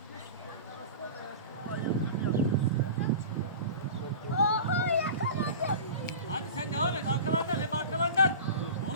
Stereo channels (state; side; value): inverted; both; correlation -0.34